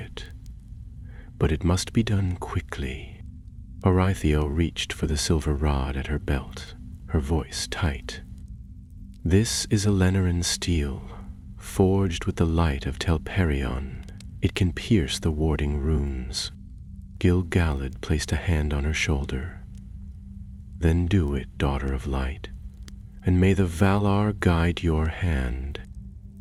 But it must be done quickly." Horathiel reached for the silver rod at her belt, her voice tight. "This is a Lenaran steel, forged with the light of Telperion. It can pierce the warding runes." Gil-galad placed a hand on her shoulder. "Then do it, daughter of light, and may the Valar guide your hand."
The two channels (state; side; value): identical; both; correlation 1.00